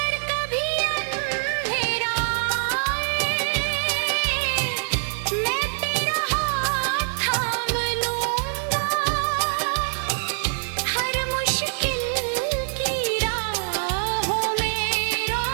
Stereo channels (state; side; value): silent; left; digital silence